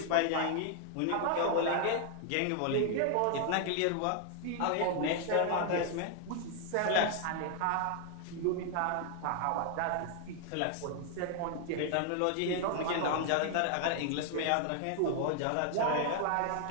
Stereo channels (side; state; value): both; different; correlation 0.00